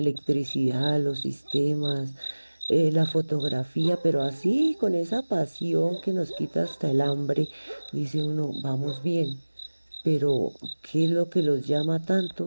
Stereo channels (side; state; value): both; inverted; correlation -1.00